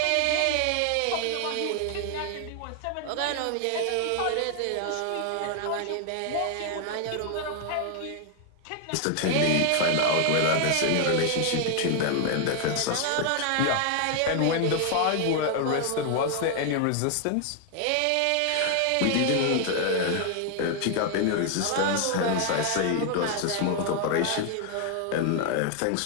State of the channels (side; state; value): both; different; correlation 0.00